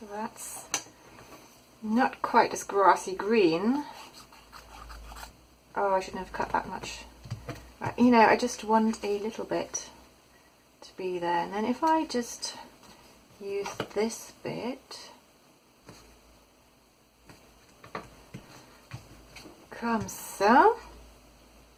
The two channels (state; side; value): identical; both; correlation 1.00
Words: That's not quite as grassy green. Oh, I shouldn't have cut that much. Right, you know, I just want a little bit to be there. And then if I just use this bit, comme ça,